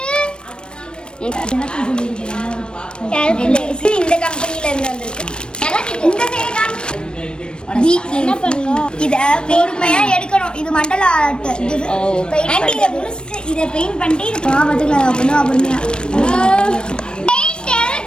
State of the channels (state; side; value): late; right; 0.053 ms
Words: கால்குலேட்டர் இந்த கம்பெனில இருந்து வந்திருக்கு. இந்த என்ன பண்ணணும்? இத பொறுமையா எடுக்கணும். இது மண்டல ஆர்ட். பெயிண்ட் இத முடிச்சிட்டு இத பெயிண்ட் பண்ணிட்டு இது பாவத்துக்கு அப்பணும் பொறுமையா.